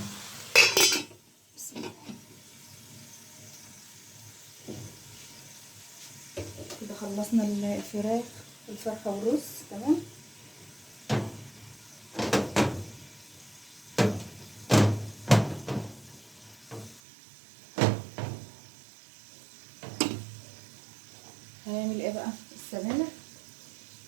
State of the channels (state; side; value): drops out; left; at 17.0 s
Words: كده خلصنا الفرخه والرز تمام. هنعمل ايه بقى، السبانخ.